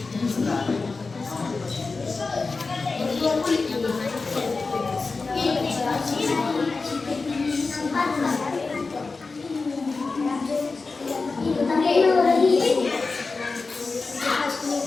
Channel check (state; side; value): quieter; right; 4.0 dB